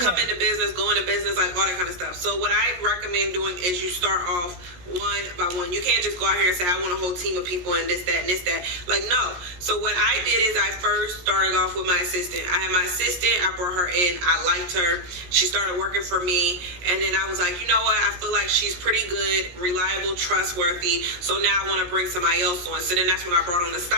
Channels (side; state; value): left; late; 17 ms